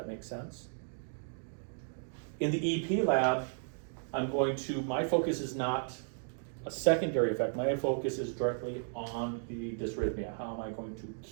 make sense? In the EP lab, my focus is not a secondary effect. My focus is directly on the dysrhythmia. How am I going to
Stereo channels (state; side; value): silent; left; digital silence